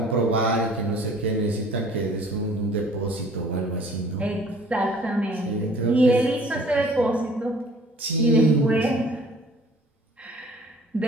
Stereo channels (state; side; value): normal; both; correlation 0.52